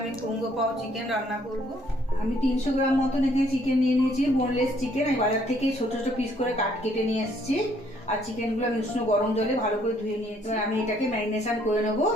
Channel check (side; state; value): both; normal; correlation 0.65